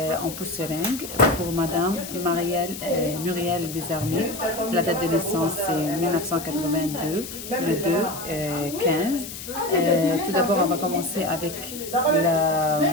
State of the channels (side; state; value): left; noise; hiss, 10 dB below the sound